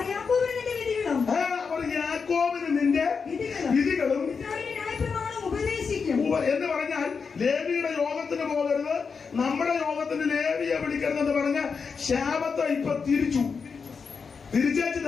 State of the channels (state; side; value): quieter; right; 5.5 dB